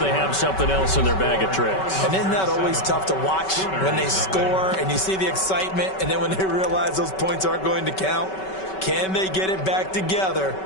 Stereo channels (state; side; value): late; right; 5.3 ms